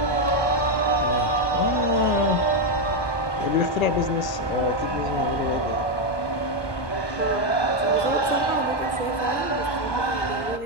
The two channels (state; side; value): late; right; 1.2 ms